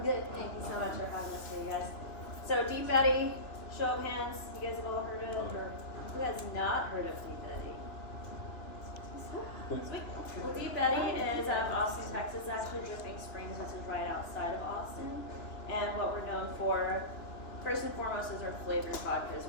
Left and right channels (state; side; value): late; right; 2.9 ms